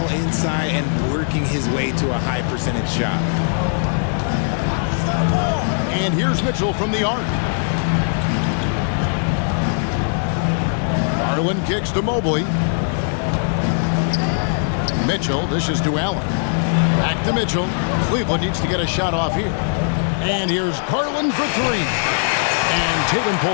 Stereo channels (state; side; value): silent; right; digital silence